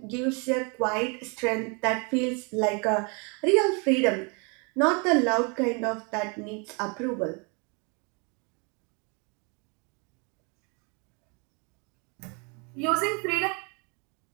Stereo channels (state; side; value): quieter; left; 33.0 dB